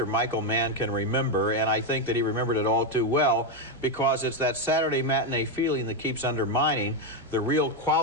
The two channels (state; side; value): normal; both; correlation 0.06